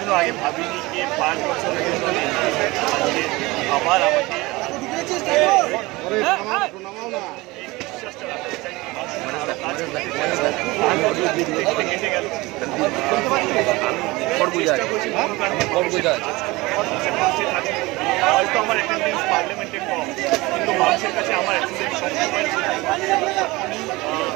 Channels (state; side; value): quieter; left; 21.8 dB